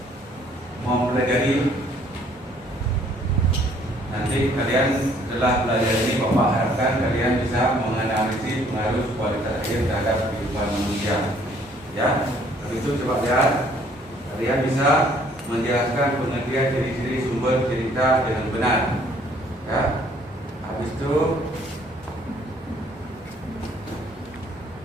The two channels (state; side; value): normal; both; correlation 0.61